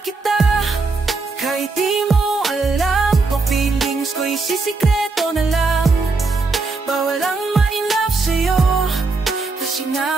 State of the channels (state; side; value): quieter; left; 4.0 dB